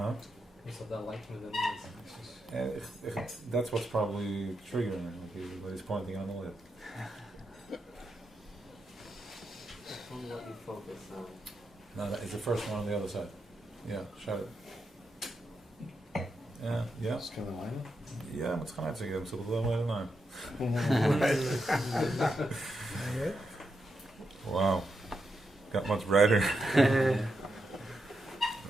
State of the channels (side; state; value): both; normal; correlation 0.85